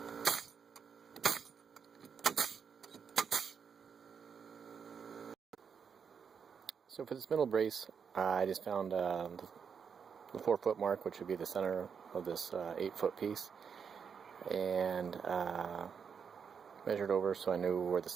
So for this middle brace, I just found the 4-foot mark, which would be the center of this 8-foot piece, and measured over so I knew where the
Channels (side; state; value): left; quieter; 6.6 dB